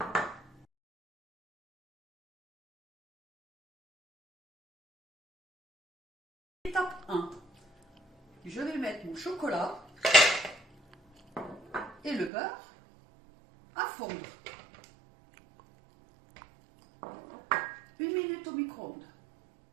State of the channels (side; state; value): left; drops out; at 12.3 s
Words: Étape 1. Je vais mettre mon chocolat et le beurre à fondre. 1 minute au micro-ondes.